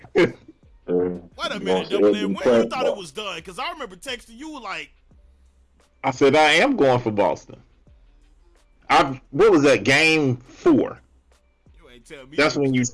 Wait a minute, Double M. When you thought it was done? Because I remember texting you like, I said I am going for Boston. What was that, game 4? You ain't tell me. That's when you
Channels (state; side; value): identical; both; correlation 1.00